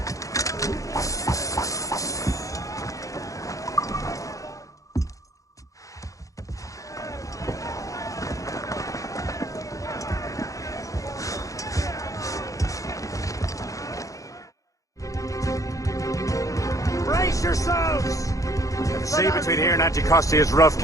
The sea between here and Anticosti is rough,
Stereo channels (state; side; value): late; right; 0.16 ms